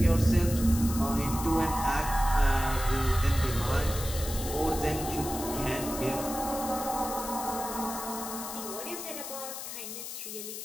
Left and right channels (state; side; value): noise; left; hiss, 8 dB below the sound